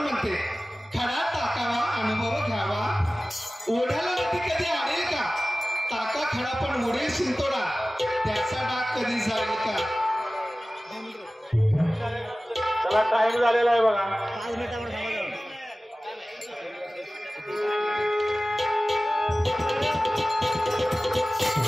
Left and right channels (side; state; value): both; normal; correlation 0.97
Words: खडा टाकावा अनुभव घ्यावा. ओढ्याला नदी कधी आडेल का? टाका खडा पण उडेल शिंतोडा. त्याचा डाग कधी जाईल का? चला टाइम झालेला आहे बघा.